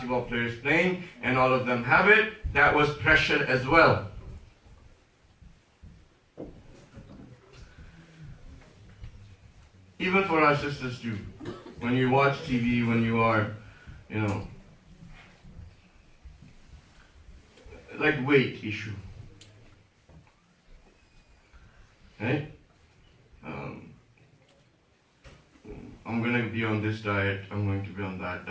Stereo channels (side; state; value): both; identical; correlation 1.00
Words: players playing, and all of them have it. That was pressure as well. Even for our sisters too. When you watch TV, when you are, like weight issue. Right? I'm going to be on this diet, I'm going to be on that